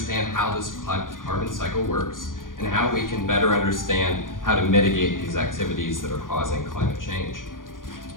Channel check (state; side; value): late; right; 0.89 ms